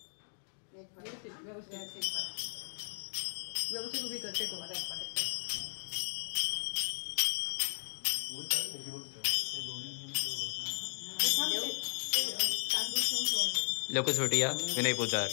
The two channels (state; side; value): silent; right; digital silence